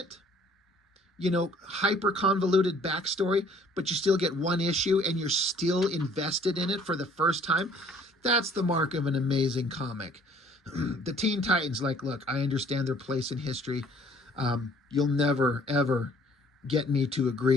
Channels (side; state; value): both; normal; correlation 0.57